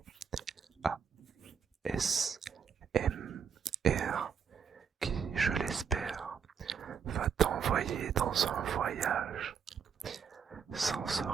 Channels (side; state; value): left; quieter; 6.9 dB